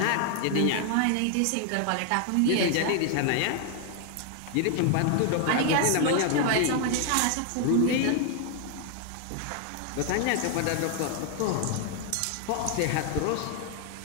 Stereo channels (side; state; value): both; different; correlation 0.00